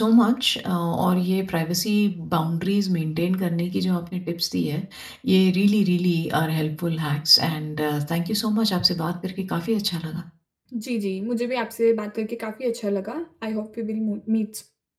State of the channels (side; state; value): both; identical; correlation 1.00